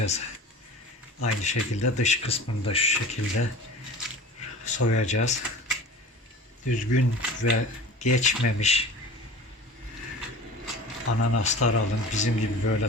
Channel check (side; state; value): both; normal; correlation 0.38